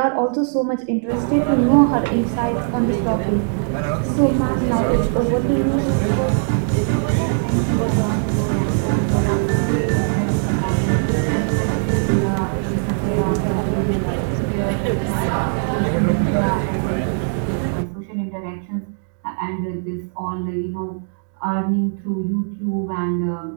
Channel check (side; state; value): left; silent; 66 dB below the other